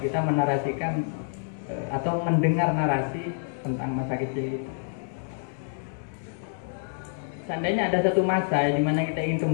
menarasikan atau mendengar narasi tentang masa kecil itu? Seandainya ada satu masa di mana kita ingin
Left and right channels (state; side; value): silent; right; digital silence